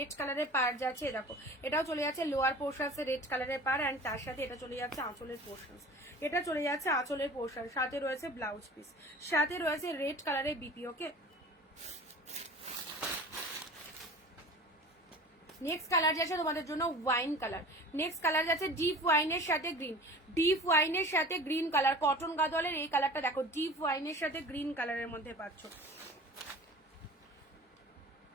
কালারের পার যাচ্ছে, দেখো এটাও চলে যাচ্ছে লোয়ার পোর্শনস রেড কালারের পার, অ্যান্ড তার সাথে এটা চলে যাচ্ছে আঁচলের পোর্শনস, এটা চলে যাচ্ছে আঁচলের পোর্শন, সাথে রয়েছে ব্লাউজ পিস, সাথে রয়েছে রেড কালারের বিপি। ওকে নেক্সট কালার যাচ্ছে তোমাদের জন্য ওয়াইন কালার, নেক্সট কালার যাচ্ছে ডিপ ওয়াইনের সাথে গ্রিন, ডিপ ওয়াইনের সাথে গ্রিন কালার, কটন গাদোয়ালের এই কালারটা দেখো, ডিপ ওয়াইনের সাথে গ্রিন কালারের মধ্যে পাচ্ছ,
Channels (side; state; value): both; normal; correlation 0.40